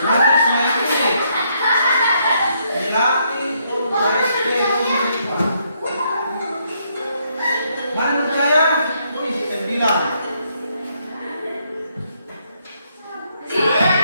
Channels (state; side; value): inverted; both; correlation -0.74